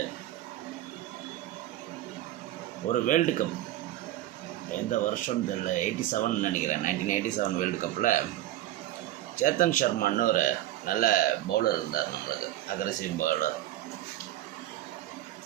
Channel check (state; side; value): quieter; left; 14.2 dB